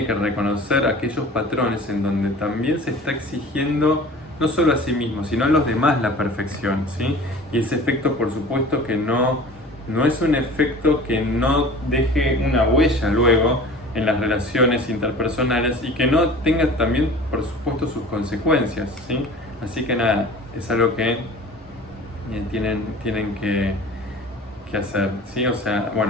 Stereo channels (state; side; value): normal; both; correlation 0.42